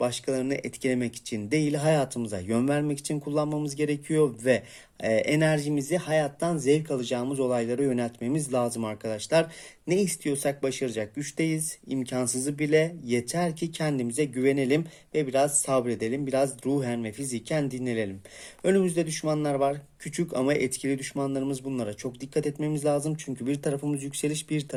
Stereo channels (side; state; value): both; identical; correlation 1.00